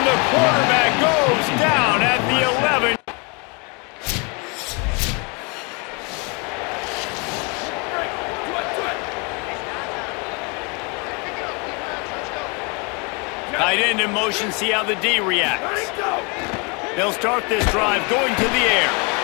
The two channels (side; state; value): right; quieter; 31.9 dB